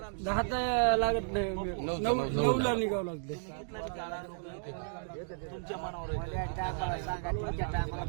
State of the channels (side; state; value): left; silent; digital silence